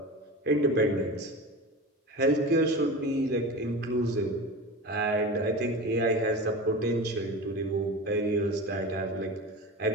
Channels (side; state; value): both; normal; correlation 0.30